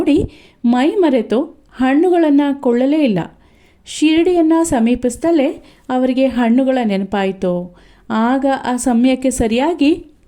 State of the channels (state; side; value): identical; both; correlation 1.00